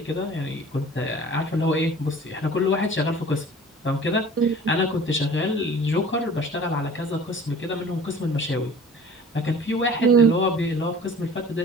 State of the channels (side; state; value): both; normal; correlation 0.45